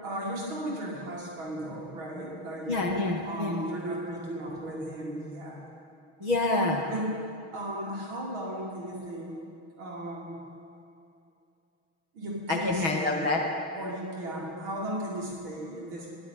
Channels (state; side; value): late; left; 6.3 ms